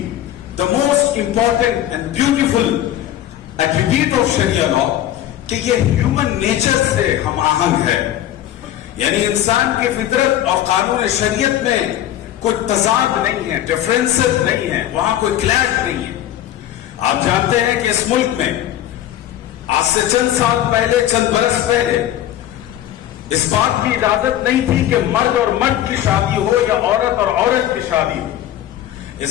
the most important and beautiful attribute of Sharia law، کہ یہ ہیومن نیچر سے ہم آہنگ ہے. یعنی انسان کی فطرت اور قانون شریعت میں کوئی تضاد نہیں ہے، ڈفرینسز نہیں ہے، وہاں کوئی کلیش نہیں ہے. آپ جانتے ہیں کہ اس ملک میں آج سے چند سال پہلے، چند برس پہلے اس بات کی اجازت نہیں تھی کہ مرد اور مرد کی شادی ہو یا عورت اور عورت کی شادی ہو.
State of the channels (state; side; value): quieter; right; 12.3 dB